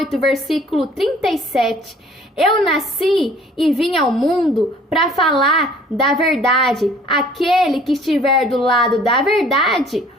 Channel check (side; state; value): both; normal; correlation 0.54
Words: versículo 37, eu nasci e vim ao mundo para falar da verdade. Aquele que estiver do lado da verdade